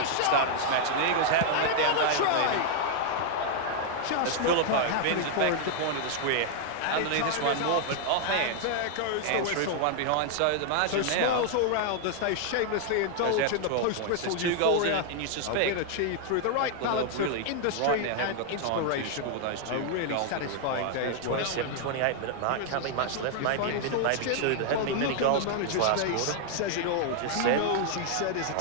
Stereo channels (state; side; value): different; both; correlation 0.00